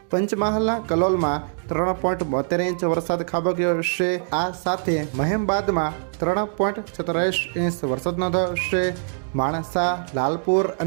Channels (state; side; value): silent; left; digital silence